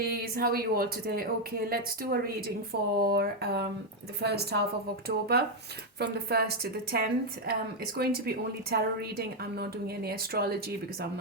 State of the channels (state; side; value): normal; both; correlation 0.03